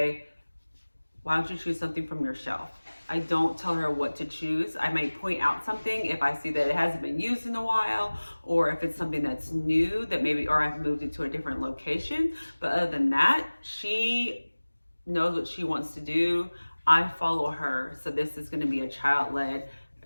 why don't you choose something from your shelf? I don't tell her what to choose. I may point out something if I see that it hasn't been used in a while, or if it's something that's new that maybe, or I've moved it to a different location. But other than that, she knows what she wants to do. I follow her. So this is going to be a child-led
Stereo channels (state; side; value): inverted; both; correlation -1.00